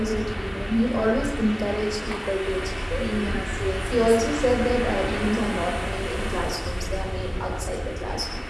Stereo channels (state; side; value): identical; both; correlation 1.00